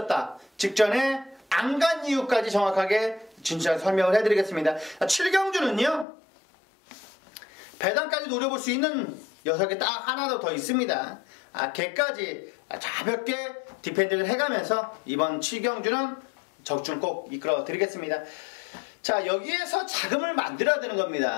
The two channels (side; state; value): right; drops out; at 6.1 s